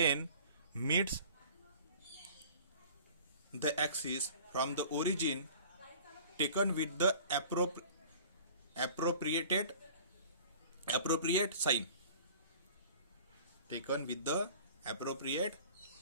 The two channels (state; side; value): inverted; both; correlation -0.46